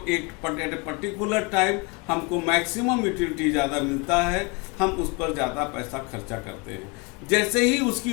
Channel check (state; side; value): quieter; right; 29.5 dB